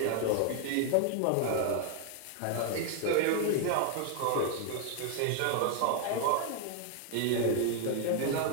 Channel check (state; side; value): different; both; correlation 0.00